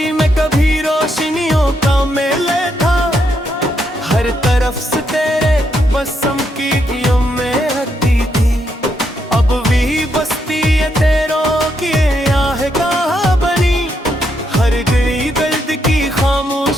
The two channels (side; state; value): both; normal; correlation 0.78